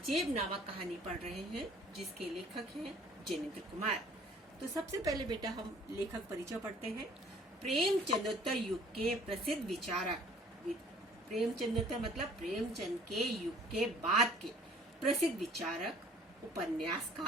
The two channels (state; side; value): normal; both; correlation 0.54